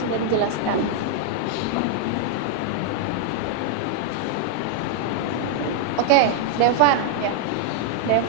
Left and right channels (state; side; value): different; both; correlation 0.00